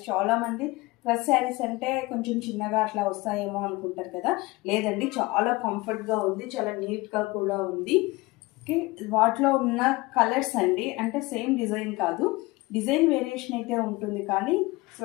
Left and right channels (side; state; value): right; quieter; 22.2 dB